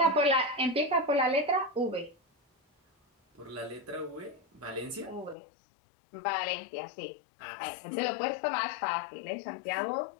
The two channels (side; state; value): right; drops out; at 5.4 s